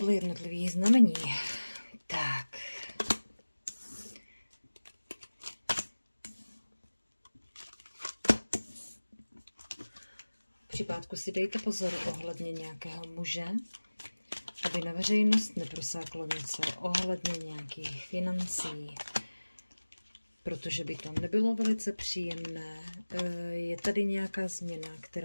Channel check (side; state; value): both; inverted; correlation -1.00